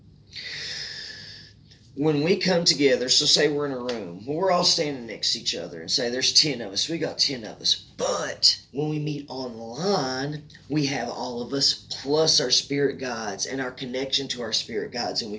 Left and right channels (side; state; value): both; identical; correlation 1.00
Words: When we come together, so say we're in a room, we're all standing next to each other and say there's 10 of us, we got 10 of us. But when we meet online, we have all of us plus our spirit guides and our connection to our spirit guides, and we